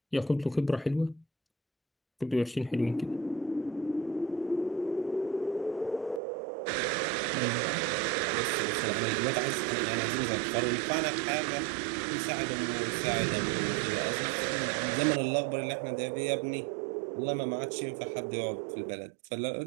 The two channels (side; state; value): left; drops out; at 6.2 s